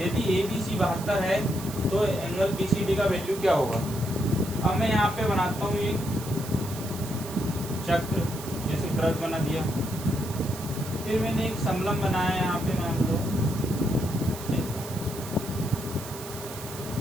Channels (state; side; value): noise; right; hiss, 12 dB below the sound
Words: ABC 72 है तो एंगल BCD का वैल्यू क्या होगा। अब मैं यहाँ पे बनाता हूँ एक चक्र, जैसे वृत्त बना दिया, फिर मैंने एक समलंब बनाया यहाँ पे, मान लो